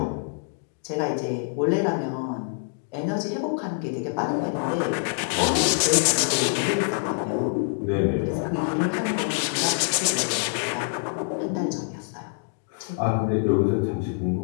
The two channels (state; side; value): quieter; right; 35.6 dB